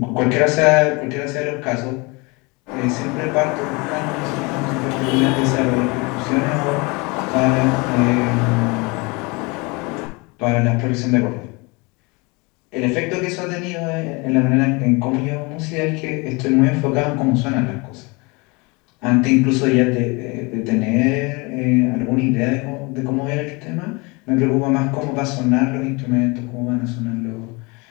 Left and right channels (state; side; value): quieter; right; 27.4 dB